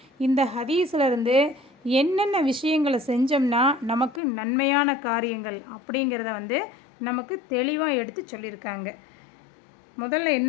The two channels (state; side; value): drops out; right; at 4.2 s